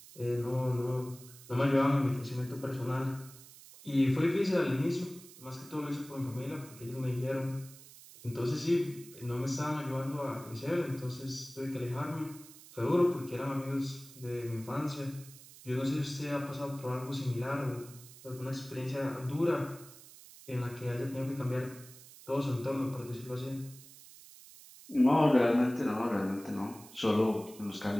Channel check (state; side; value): noise; right; hiss, 19 dB below the sound